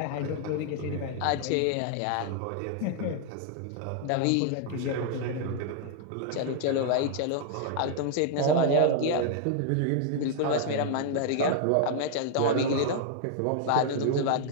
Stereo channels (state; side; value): different; both; correlation 0.00